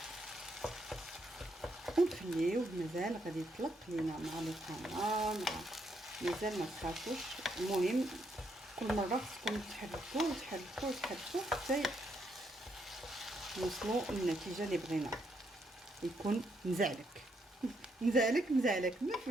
ونخليوه مازال غادي يطلق لينا مع القناه، مازال ما تخافوش. المهم كل مره خصكم تحركوا حتى نوصلوا للنتيجه اللي بغينا. يكون مزعلك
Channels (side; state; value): both; normal; correlation 0.76